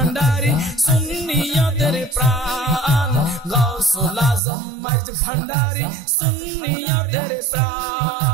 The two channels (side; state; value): left; drops out; at 4.4 s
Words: সুন্নিয়তের প্রাণ গাউসুল আজম মাইজ ভান্ডারি সুন্নিয়তের